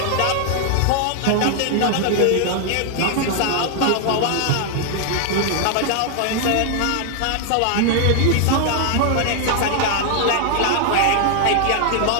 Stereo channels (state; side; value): different; both; correlation 0.00